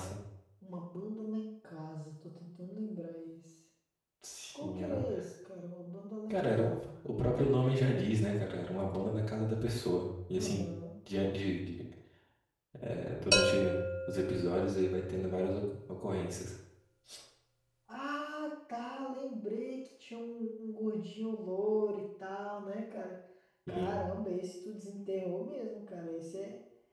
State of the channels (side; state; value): both; identical; correlation 1.00